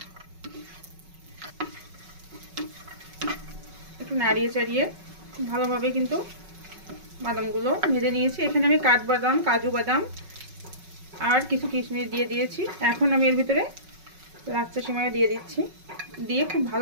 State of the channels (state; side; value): late; left; 5.4 ms